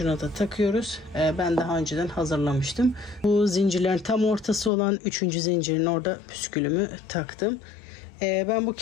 da takıyoruz. Ben daha önceden hazırlamıştım. Bu zincirlerin tam ortası olan 3. zincirin orada püskülümü taktım. Ben bu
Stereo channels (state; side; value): drops out; right; at 4.7 s